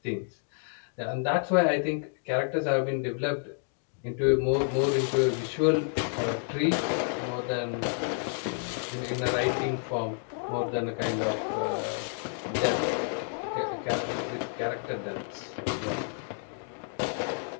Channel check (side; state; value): right; silent; 58 dB below the other